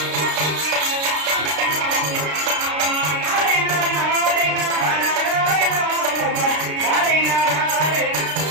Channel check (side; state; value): left; late; 33 ms